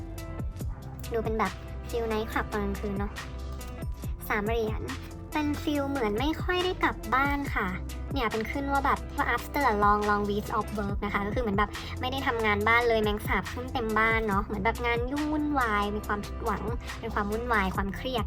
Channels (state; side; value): identical; both; correlation 1.00